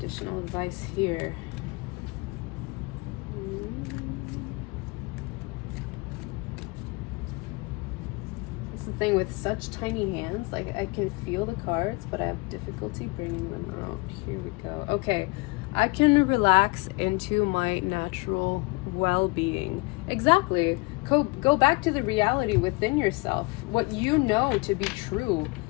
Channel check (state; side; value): quieter; right; 26.6 dB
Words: advice here? The thing with such tiny hands, like I can feel the cards, but I have difficulty bringing them out. Here we go. Okay, I can relax into my natural well-being. Exactly. Go back to the reality within yourself, what you know to be true,